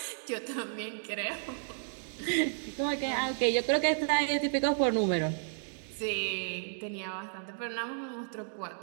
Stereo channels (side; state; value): left; silent; digital silence